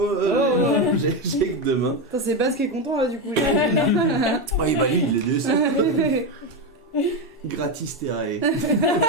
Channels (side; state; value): both; normal; correlation 0.11